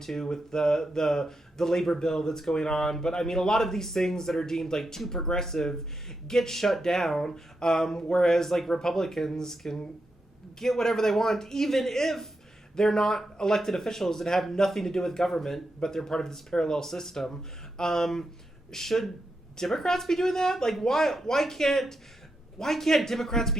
to with the labor bill that's going on. But I mean, a lot of these things that are deemed too progressive get shut down. Whereas Republicans can get whatever they want, even if they're not elected officials and have nothing to do with government, but they're part of this parallel system. Should Democrats be doing that? Why can't Democrats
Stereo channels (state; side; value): normal; both; correlation 0.85